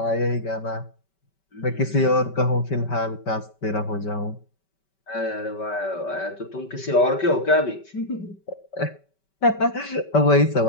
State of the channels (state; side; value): late; right; 5.2 ms